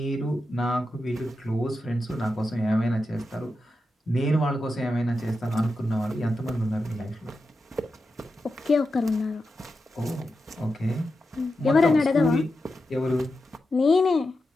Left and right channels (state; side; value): normal; both; correlation 0.89